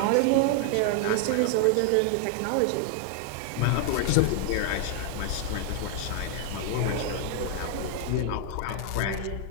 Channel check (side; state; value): both; different; correlation 0.00